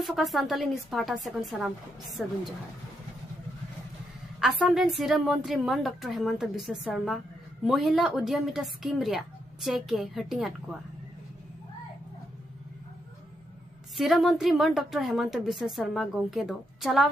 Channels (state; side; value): normal; both; correlation 0.80